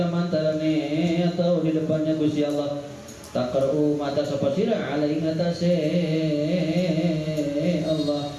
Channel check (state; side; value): identical; both; correlation 1.00